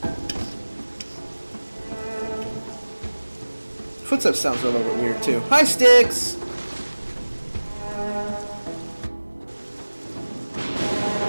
Footsteps sounds a little bit weird, too. Hi, Styx!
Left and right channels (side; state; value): both; inverted; correlation -1.00